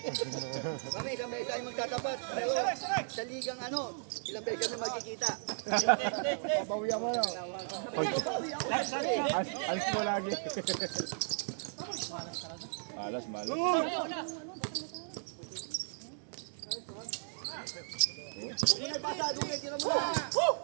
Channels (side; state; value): left; silent; digital silence